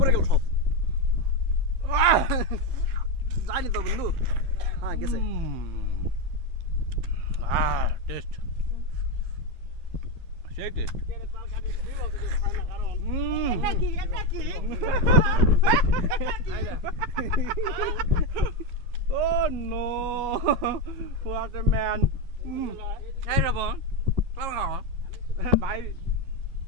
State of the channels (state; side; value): late; left; 11 ms